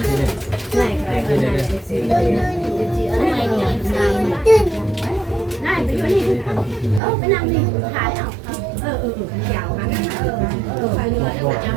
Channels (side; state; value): left; drops out; at 7.0 s